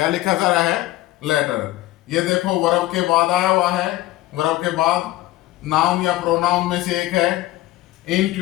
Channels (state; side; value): quieter; right; 16.6 dB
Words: लिखा जा रहा है? लेटर। ये देखो वर्ब के बाद आया हुआ है। वर्ब के बाद नाउन या प्रोनाउन में से एक है।